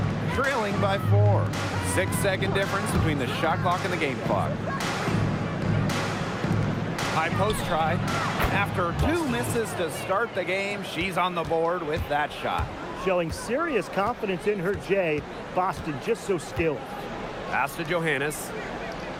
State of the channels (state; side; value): identical; both; correlation 1.00